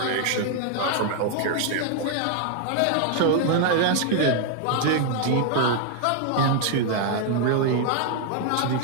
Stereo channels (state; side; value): different; both; correlation 0.00